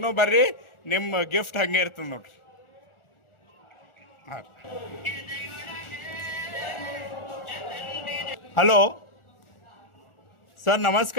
ಬರ್ರಿ, ನಿಮ್ಮ ಗಿಫ್ಟ್ ಹಂಗೆ ಇರ್ತದೆ ನೋಡ್ರಿ. ಹಾಂ, ಹಲೋ ಸರ್,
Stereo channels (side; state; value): right; late; 1.4 ms